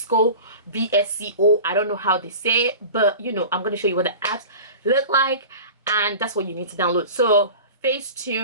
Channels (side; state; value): both; inverted; correlation -0.36